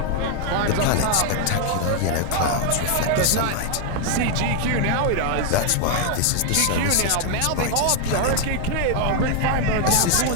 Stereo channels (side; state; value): both; different; correlation 0.00